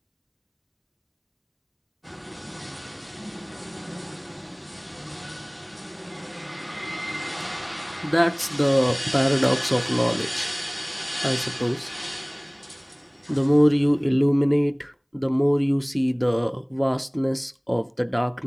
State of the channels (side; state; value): both; identical; correlation 1.00